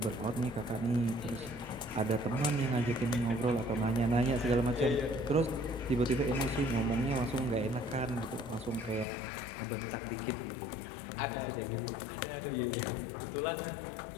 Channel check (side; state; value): right; drops out; at 9.1 s